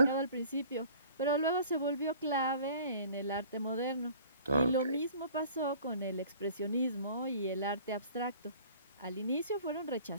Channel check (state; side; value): inverted; both; correlation -0.48